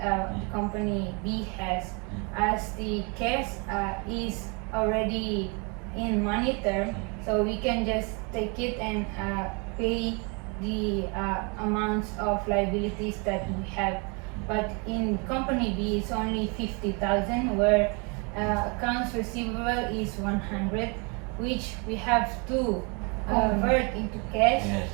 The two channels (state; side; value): quieter; left; 32.7 dB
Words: company B has, as the cash is already in money term, so we can just take it and pay the amounts of liabilities that we have. But in company B, it's only 50,000, where accounts receivable is 100, which we have to convert into cash. Yes.